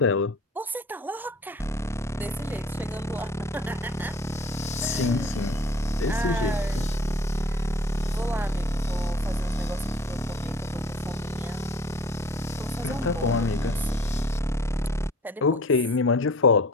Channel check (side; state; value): both; normal; correlation 0.49